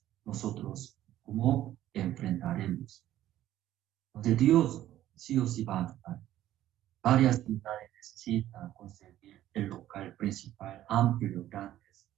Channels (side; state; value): left; quieter; 13.2 dB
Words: nosotros, ¿cómo enfrentaremos? Porque Dios sí o sí va a ayudar. Varias ciudades necesitan conseguir el local principal, amplio, grandes.